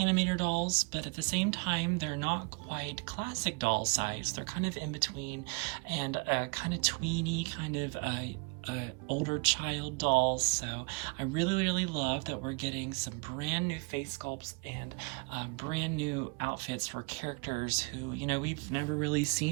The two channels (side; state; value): left; quieter; 32.9 dB